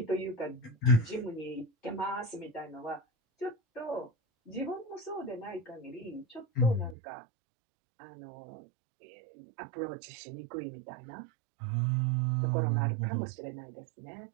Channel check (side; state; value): left; drops out; at 7.0 s